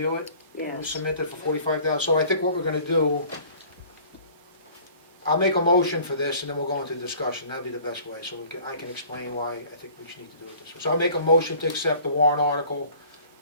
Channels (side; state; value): both; inverted; correlation -0.50